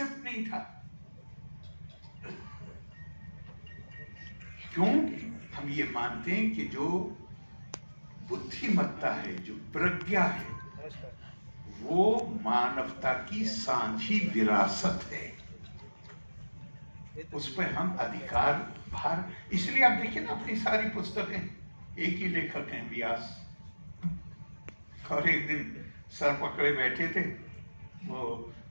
नहीं था। क्यों? हम ये मानते हैं कि जो बुद्धिमत्ता है, जो प्रज्ञा है, वो मानवता की साझी विरासत है। उस पर हम अधिकार भार, इसलिए आप देखिए ना अपनी सारी पुस्तकें एक ही लेखक हैं, व्यास। और एक दिन सर पकड़े बैठे थे, वो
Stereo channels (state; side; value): inverted; both; correlation -1.00